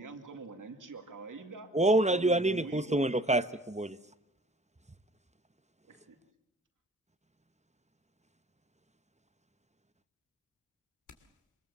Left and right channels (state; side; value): normal; both; correlation 0.51